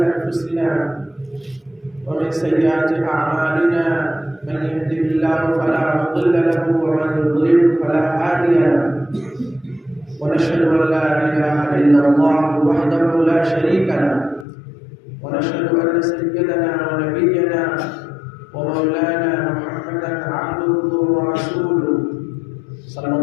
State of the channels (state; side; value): drops out; right; at 14.5 s